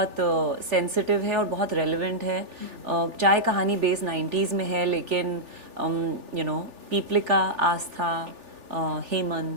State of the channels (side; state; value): left; late; 3.4 ms